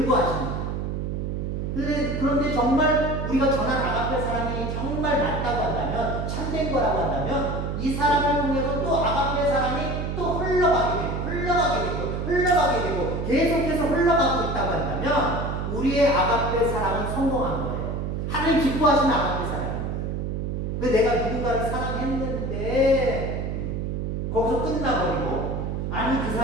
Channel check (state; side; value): noise; right; hum, 2 dB below the sound